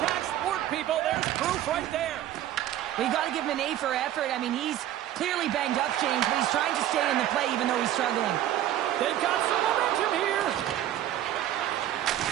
sport, people. There's proof right there. Well, you got to give him an A for effort. I mean, he's clearly banged up, James, but he's trying to stay in the play even though he's struggling. They've got some momentum here.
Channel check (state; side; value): quieter; left; 12.4 dB